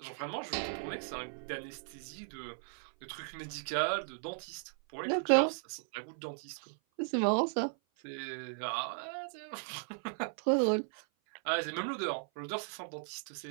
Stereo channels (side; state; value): left; silent; 53 dB below the other